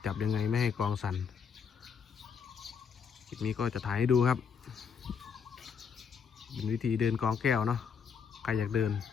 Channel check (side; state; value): right; quieter; 6.5 dB